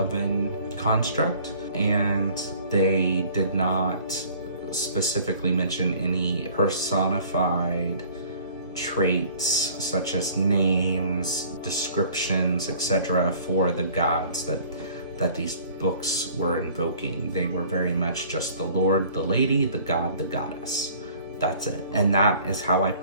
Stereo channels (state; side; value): inverted; both; correlation -0.51